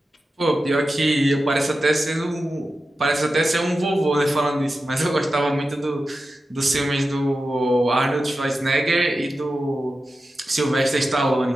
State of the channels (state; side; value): normal; both; correlation 0.92